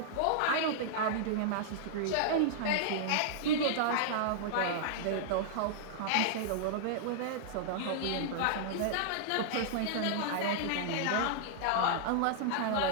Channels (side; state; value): both; different; correlation -0.01